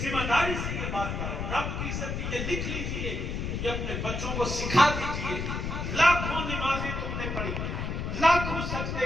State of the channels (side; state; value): left; noise; rumble, 3 dB below the sound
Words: ذمہ داری سے یہ بات کر رہا ہوں۔ رب کی عزت کی یہ لکھ لیجئے، یہ اپنے بچوں کو سکھا دیجئے۔ لاکھوں نمازیں تم نے پڑھی، لاکھوں سجدے